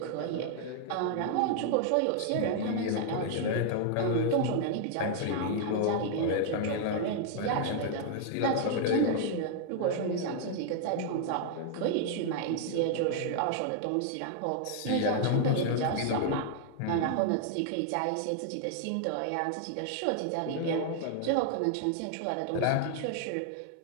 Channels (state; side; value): different; both; correlation -0.01